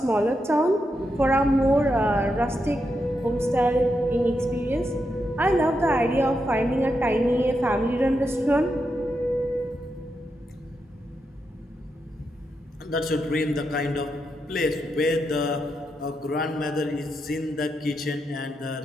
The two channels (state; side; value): normal; both; correlation 0.84